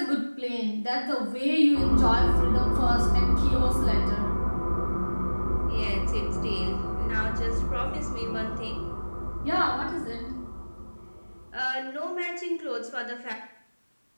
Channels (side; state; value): both; inverted; correlation -1.00